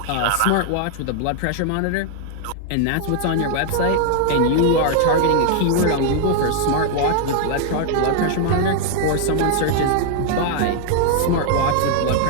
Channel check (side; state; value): both; different; correlation 0.00